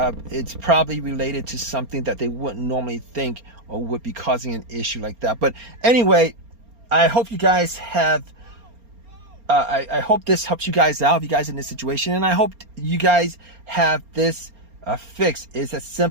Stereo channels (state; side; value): late; left; 4.3 ms